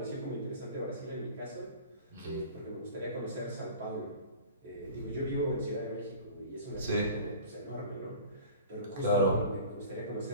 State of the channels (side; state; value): both; inverted; correlation -0.40